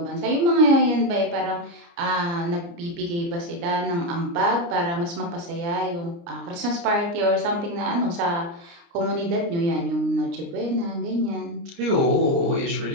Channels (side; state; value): left; late; 29 ms